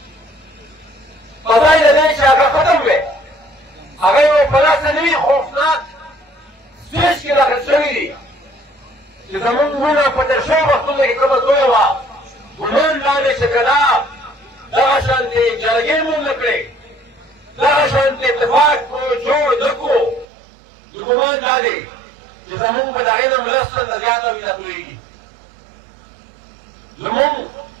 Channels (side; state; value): left; drops out; at 20.2 s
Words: په ځای د دې چې هغه ختم وی هغه یو په داسې نوي خوفناک سټېج کې داخل شوي دي چې زموږ مړونه په تېر شویو وختونو کې کومه لویه وه ګمان دا دی چې که دا دغه شانتې جرګې مونږ نه کړې دغه شانتې اتفاق جوړ نه کړو نو ګمان دا دی چې زموږ به د هغې نه لس چنده زیاته وینه تویېږي. زموږ